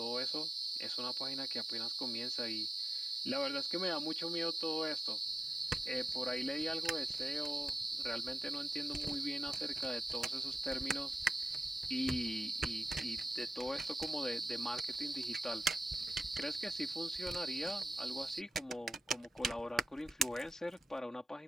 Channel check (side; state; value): both; normal; correlation 0.93